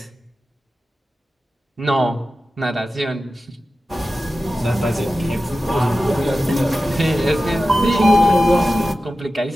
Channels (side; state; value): both; normal; correlation 0.94